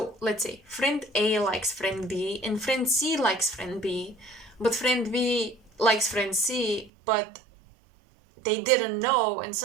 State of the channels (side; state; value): left; drops out; at 6.9 s